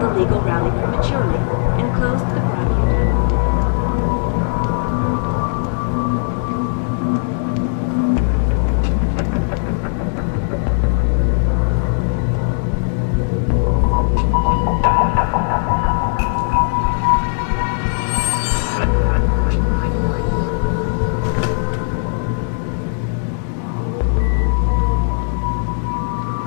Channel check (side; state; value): right; silent; digital silence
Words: legal rally prematurely and closed the Broadview tunnel.